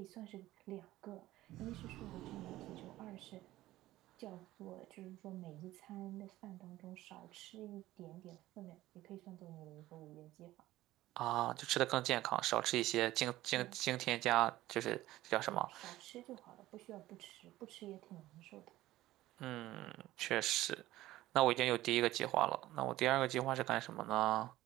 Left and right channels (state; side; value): quieter; left; 16.0 dB